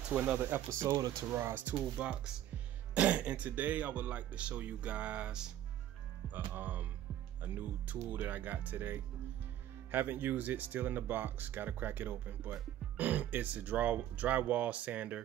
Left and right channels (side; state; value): left; quieter; 12.0 dB